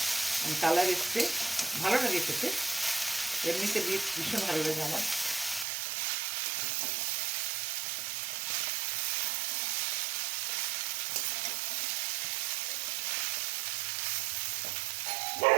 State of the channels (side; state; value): left; drops out; at 5.7 s